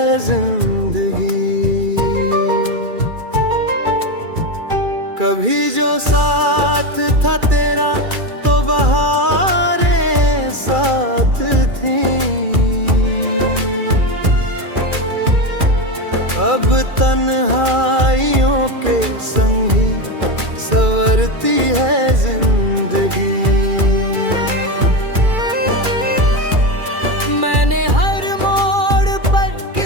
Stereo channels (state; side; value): late; left; 2.3 ms